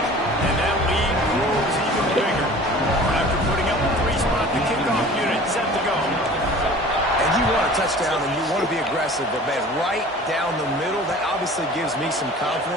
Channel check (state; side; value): normal; both; correlation 0.44